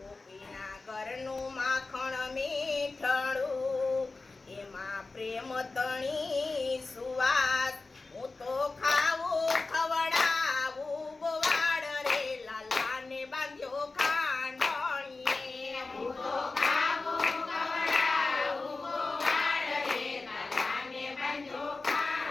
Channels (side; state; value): right; quieter; 3.6 dB